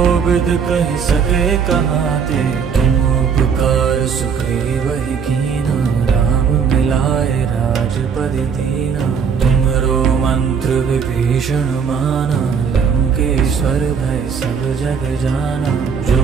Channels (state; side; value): quieter; left; 6.5 dB